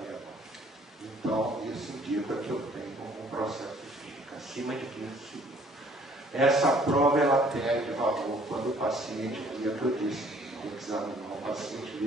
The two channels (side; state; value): both; normal; correlation 0.59